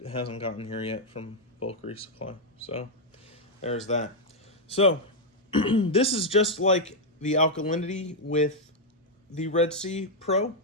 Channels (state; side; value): normal; both; correlation -0.02